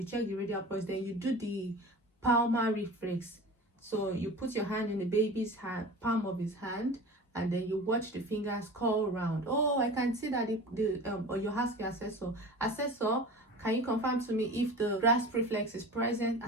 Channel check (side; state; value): both; normal; correlation 0.35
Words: check the radial pulse. Then you do the palmar reflex. So you put your hand in the baby's hand, palm of his hand, and then you watch the fingers curl around. Oh, I can see that or you ask your assessor, can you confirm to me if the grasp reflex is present?